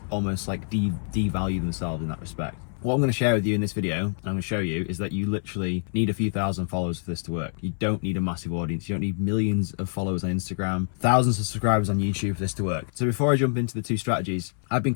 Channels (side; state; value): right; silent; 61 dB below the other